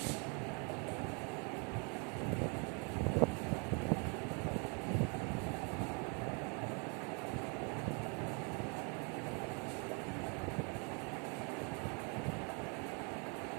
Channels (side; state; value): left; quieter; 35.5 dB